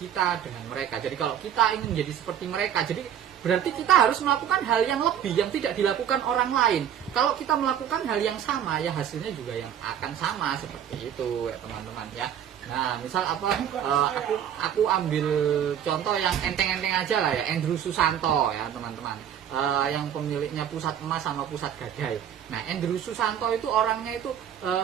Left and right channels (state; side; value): quieter; left; 9.6 dB